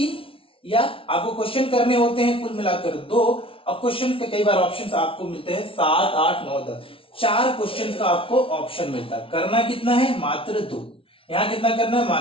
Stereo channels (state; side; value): late; right; 0.26 ms